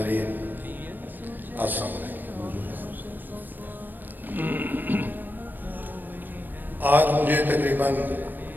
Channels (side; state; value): left; late; 0.091 ms